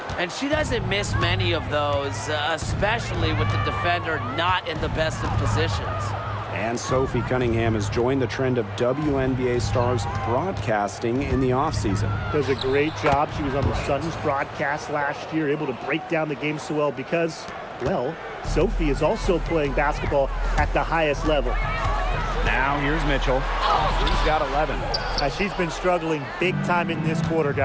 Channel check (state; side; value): identical; both; correlation 1.00